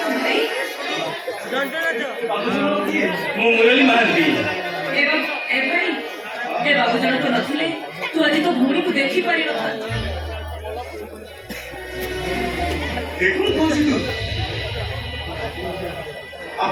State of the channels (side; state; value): both; identical; correlation 1.00